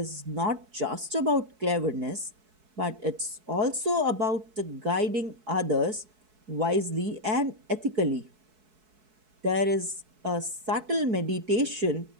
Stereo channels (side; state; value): left; late; 4.6 ms